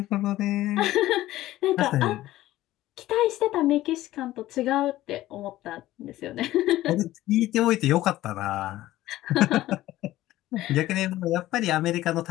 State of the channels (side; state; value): right; quieter; 15.5 dB